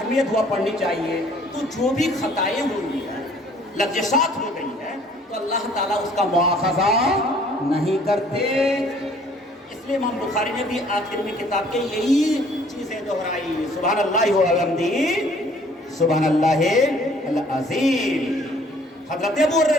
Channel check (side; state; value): both; normal; correlation 0.57